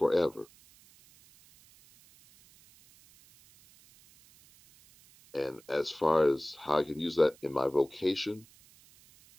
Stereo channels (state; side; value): noise; right; hiss, 27 dB below the sound